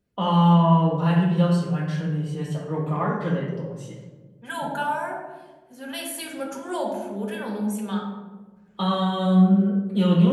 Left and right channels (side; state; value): both; identical; correlation 1.00